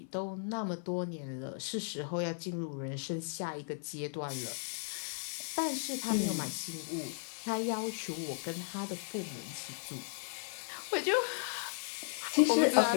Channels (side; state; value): right; silent; 54 dB below the other